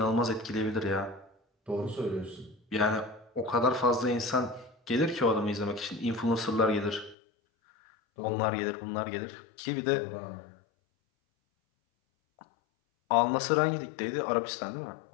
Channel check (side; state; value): right; drops out; at 7.2 s